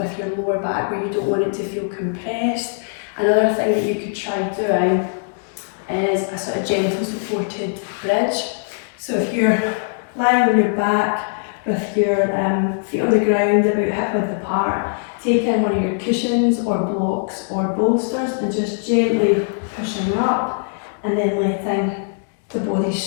your lower back where you don't want it to feel compressed, another thing that you could try doing is a sort of gentle supported bridge. So if you're lying on your back with your feet on the ground about hip width apart, taking one of your cushions or blocks or bolsters and just gently pushing up and then letting the body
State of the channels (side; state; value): right; silent; digital silence